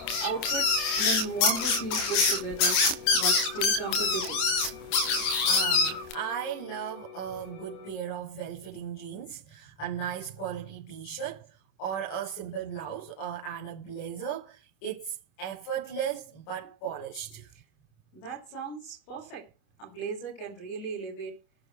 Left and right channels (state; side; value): late; right; 26 ms